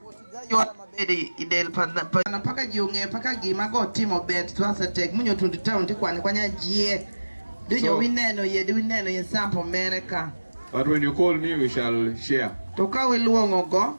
But when you call me, we shall share. Now,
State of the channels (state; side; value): inverted; both; correlation -1.00